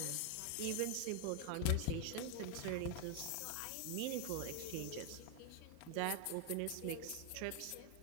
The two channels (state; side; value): different; both; correlation 0.01